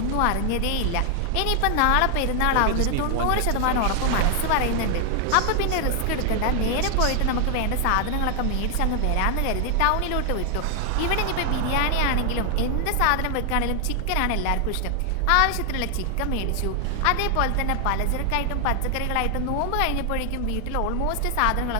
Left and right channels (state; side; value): different; both; correlation 0.00